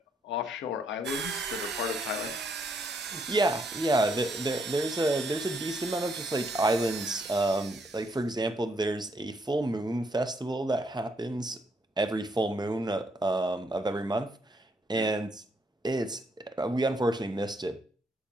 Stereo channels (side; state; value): both; normal; correlation 0.73